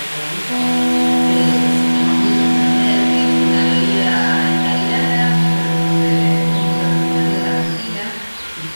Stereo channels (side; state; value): both; inverted; correlation -1.00